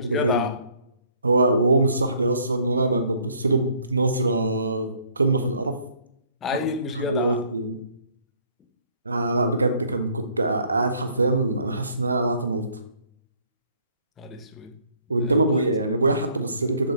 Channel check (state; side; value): inverted; both; correlation -0.62